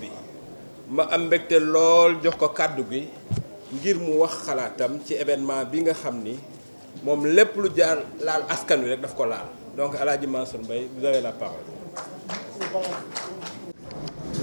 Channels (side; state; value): both; inverted; correlation -1.00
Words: ma am mbégte lool jox ko kàddu gi ngir mu wax xalaatam ci événement bi nga xam ni moom lépp lu jaar laal askan wi rek daf ko laal donc El Hadji Mansour Mbaye vous avez la parole.